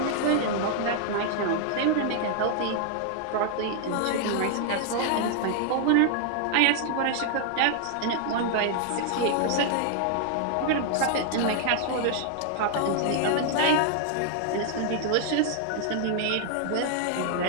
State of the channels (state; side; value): different; both; correlation 0.00